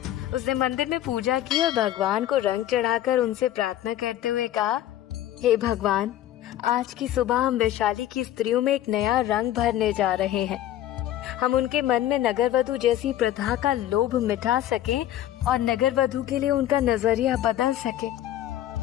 उसने मंदिर में पूजा की और भगवान को रंग चढ़ाकर उनसे प्रार्थना करते हुए कहा, हे भगवान, आज की सुबह हम वैशाली की स्त्रियों में एक नया रंग भरने जा रहे हैं। हम उनके मन में नगरवधु जैसी प्रथा का लोभ मिटा सकें और नगरवधु के लिए उनका नजरिया बदल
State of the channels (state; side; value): quieter; right; 12.7 dB